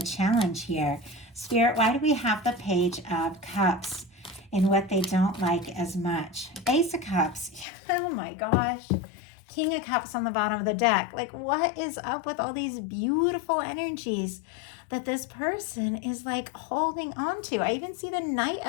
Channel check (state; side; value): drops out; right; at 7.7 s